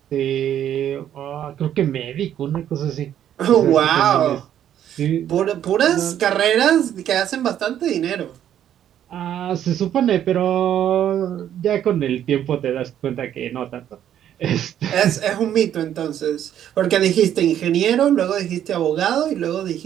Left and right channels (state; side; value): quieter; left; 10.5 dB